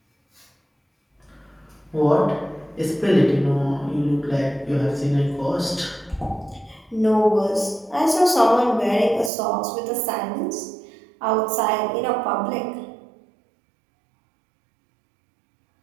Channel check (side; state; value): left; drops out; at 9.3 s